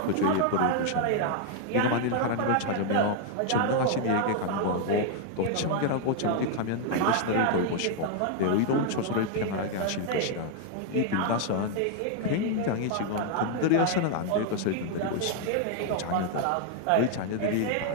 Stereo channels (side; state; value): both; different; correlation 0.00